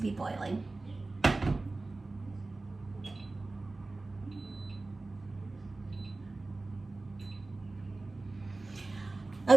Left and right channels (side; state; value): left; quieter; 3.3 dB